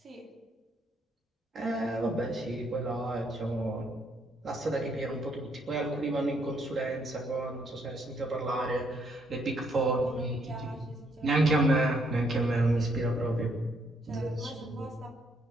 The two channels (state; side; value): normal; both; correlation 0.71